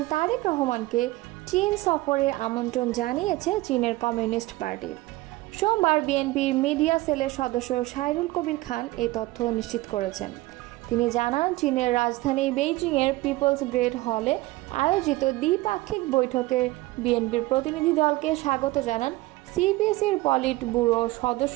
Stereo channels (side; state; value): left; quieter; 19.4 dB